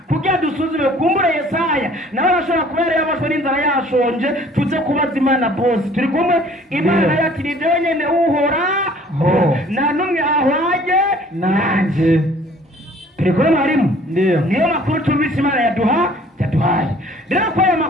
kugira dusuzume kumbura Yesaya nawe arashobora kuba yari yabashwe n'inzara yashonje tuze kubaza Imana bose turi kumwe Imana yati ni nyene uhora nta n'umwe ahwanye nanjye turi kubona harimo ndiyo niyo makuru tumvise Imana yaduhaye rero ko aya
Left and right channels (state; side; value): normal; both; correlation 0.54